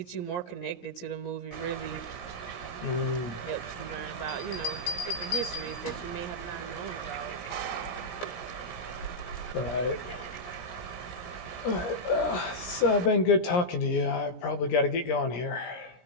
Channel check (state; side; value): late; right; 17 ms